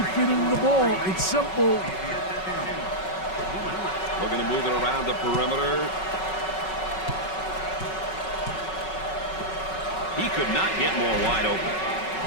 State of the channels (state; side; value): late; right; 5.4 ms